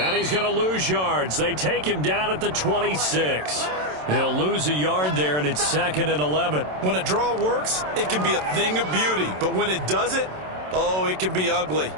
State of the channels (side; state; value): left; late; 27 ms